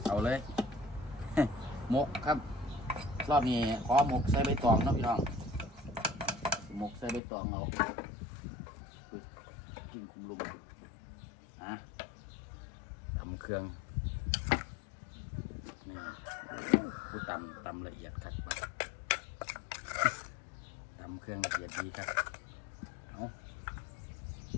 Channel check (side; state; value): right; drops out; at 7.2 s